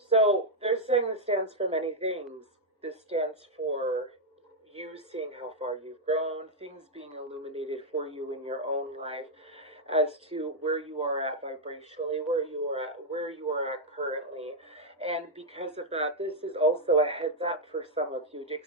they're saying this stands for many things. This stands for you seeing how far you've grown, things being illuminated for you in your own life as to where you are at vibrationally, where you are at currently. And because of that, this is also a heads up for some of you to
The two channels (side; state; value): both; normal; correlation -0.02